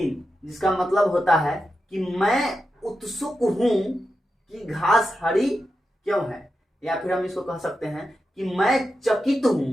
जिसका मतलब होता है कि मैं उत्सुक हूं कि घास हरी क्यों है, या फिर हम इसको कह सकते हैं कि मैं चकित हूं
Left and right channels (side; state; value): both; normal; correlation 0.89